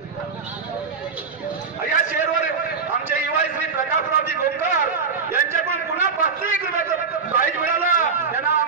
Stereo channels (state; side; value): quieter; left; 5.4 dB